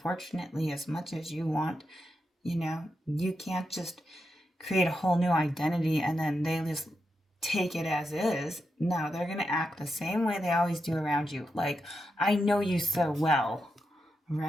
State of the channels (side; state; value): both; normal; correlation 0.86